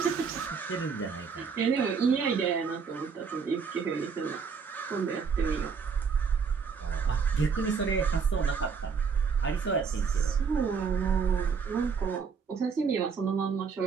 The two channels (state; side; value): quieter; left; 5.9 dB